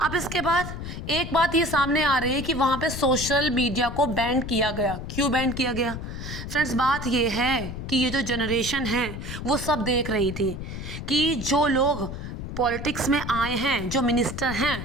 अब इसके बाद एक बात ये सामने आ रही है कि वहाँ पे सोशल मीडिया को बैन किया गया। क्यों बैन किया गया? फ्रेंड्स, बात ये है कि ये जो जनरेशन है वो सब देख रही थी कि जो लोग पॉलिटिक्स में आए हैं, जो मिनिस्टर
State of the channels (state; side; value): noise; left; rumble, 7 dB below the sound